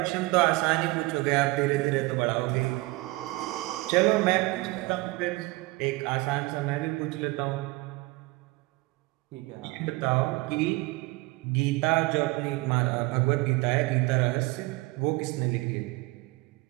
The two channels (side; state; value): left; quieter; 22.4 dB